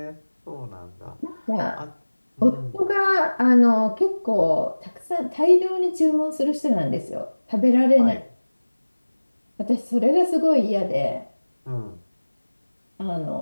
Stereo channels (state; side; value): inverted; both; correlation -1.00